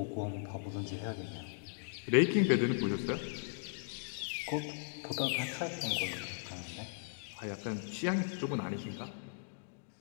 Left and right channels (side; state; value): right; silent; digital silence